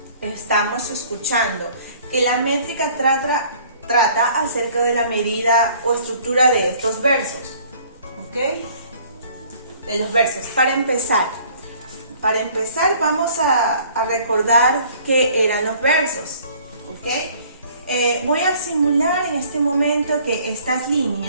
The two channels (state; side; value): inverted; both; correlation -0.55